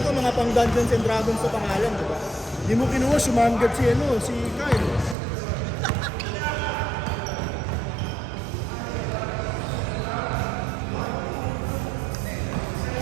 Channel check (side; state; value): left; drops out; at 5.2 s